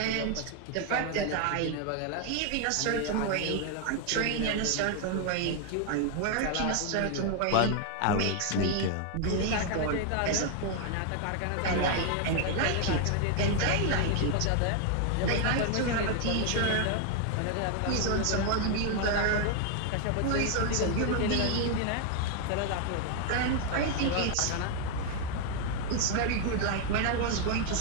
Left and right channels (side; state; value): both; different; correlation 0.00